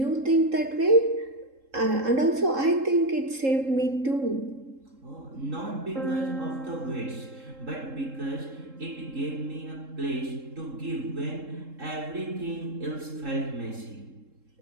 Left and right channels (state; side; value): late; left; 3.7 ms